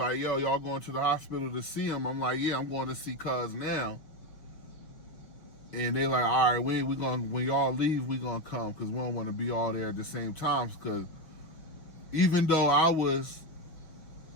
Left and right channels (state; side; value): late; right; 6.0 ms